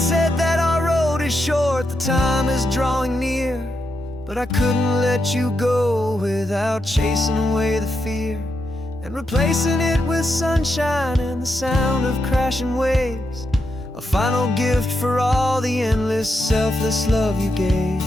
that our road is short, the time is drawing near, but I couldn't let you go without chasing away the fear and replacing it with sunshine and the sound of crashing waves, a final gift for all the endless, selfless love you gave.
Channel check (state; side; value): normal; both; correlation 0.84